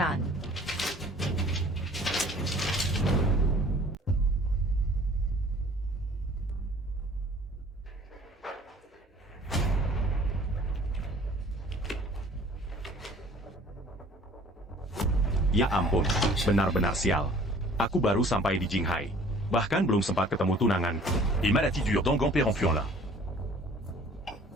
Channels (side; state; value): both; normal; correlation 0.51